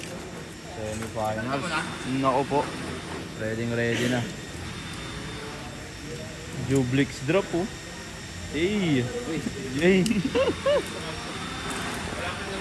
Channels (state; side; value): identical; both; correlation 1.00